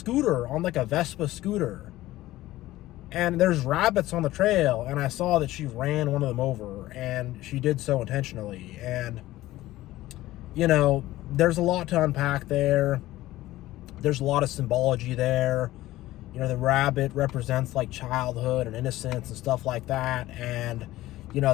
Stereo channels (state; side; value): quieter; right; 16.3 dB